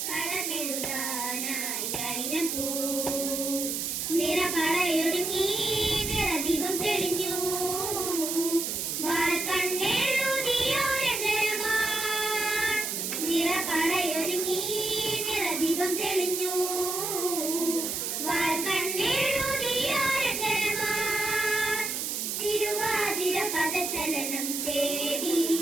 കളമെഴുതാനായി ആയിരം പൂ. നിറപടയൊരുങ്ങി നിറദീപം തെളിഞ്ഞു നിറപടയൊരുങ്ങി നിറദീപം തെളിഞ്ഞു തിരുവാതിര പദചലനം തേടി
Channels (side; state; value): right; noise; hiss, 2 dB below the sound